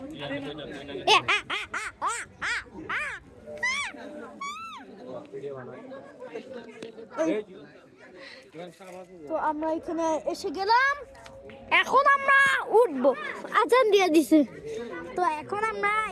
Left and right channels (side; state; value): both; identical; correlation 1.00